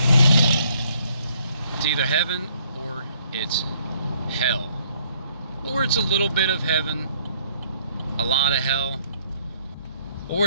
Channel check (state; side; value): inverted; both; correlation -0.65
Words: it's either heaven or it's hell. Or it's a little bit of heaven, a lot of hell.